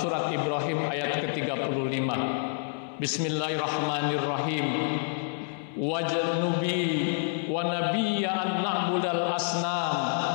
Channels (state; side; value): silent; right; 59 dB below the other